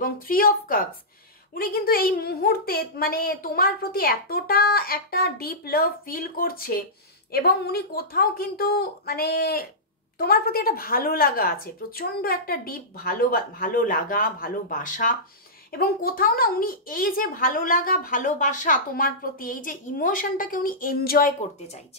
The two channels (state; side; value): normal; both; correlation -0.16